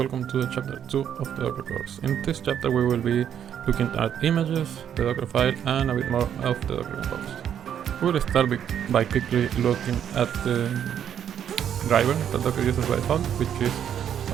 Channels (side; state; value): left; quieter; 9.2 dB